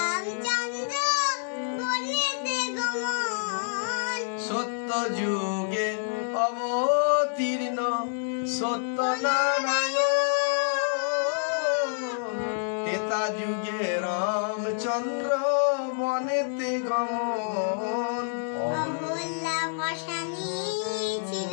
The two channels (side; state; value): right; silent; digital silence